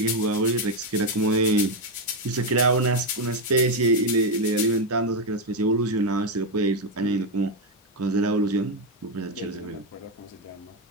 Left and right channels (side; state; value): both; normal; correlation 0.06